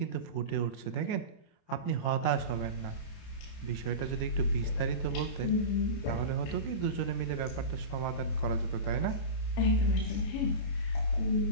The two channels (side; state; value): right; late; 30 ms